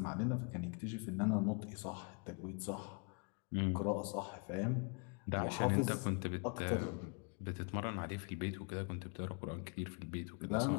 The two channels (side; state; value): right; quieter; 36.0 dB